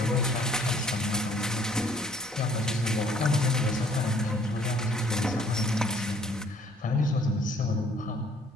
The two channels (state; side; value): normal; both; correlation 0.59